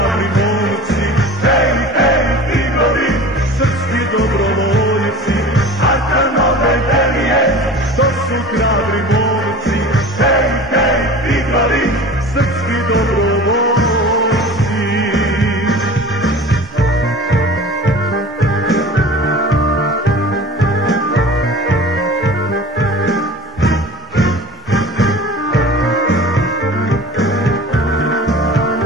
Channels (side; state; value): both; normal; correlation 0.39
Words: momci, hej, hej, tigrovi, srpski dobrovoljci. Arkanove Delije, to su hrabri momci, hej, hej, tigrovi, srpski dobrovoljci.